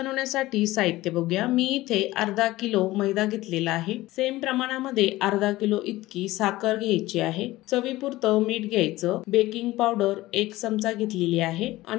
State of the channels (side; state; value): right; quieter; 17.7 dB